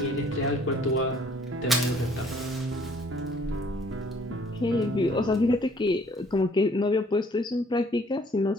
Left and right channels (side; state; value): both; normal; correlation 0.59